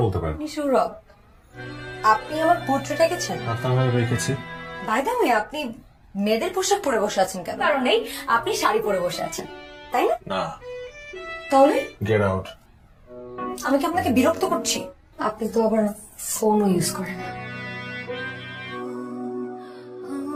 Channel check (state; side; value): identical; both; correlation 1.00